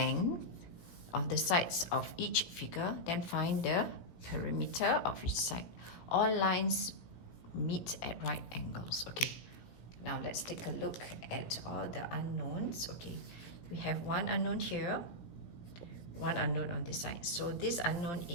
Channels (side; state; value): right; late; 17 ms